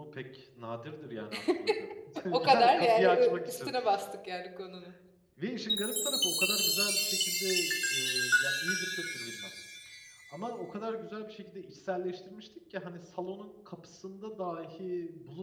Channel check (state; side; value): identical; both; correlation 1.00